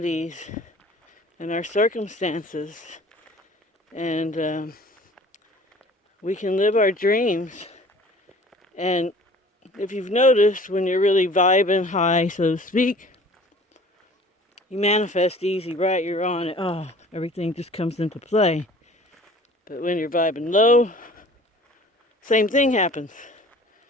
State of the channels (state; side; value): normal; both; correlation 0.48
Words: and our circumstances, and we can live our dreams. And if you've noticed, when you're really vibing high, so to speak, you manifest easy, right? You're on it. Oh, everything just comes into play. But when you're vibing low, same thing happens.